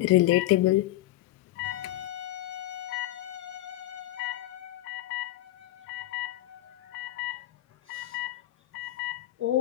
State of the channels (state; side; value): quieter; right; 15.5 dB